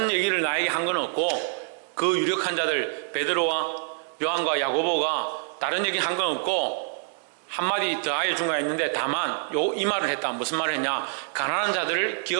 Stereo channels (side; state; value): left; silent; digital silence